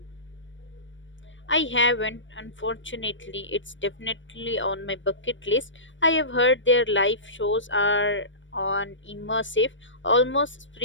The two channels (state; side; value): late; right; 0.55 ms